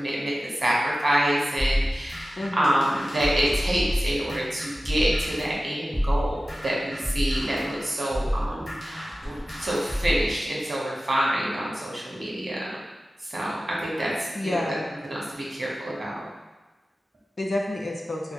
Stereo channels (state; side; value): normal; both; correlation 0.95